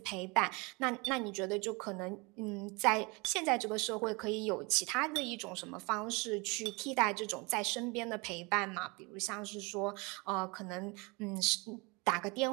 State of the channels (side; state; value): left; quieter; 27.7 dB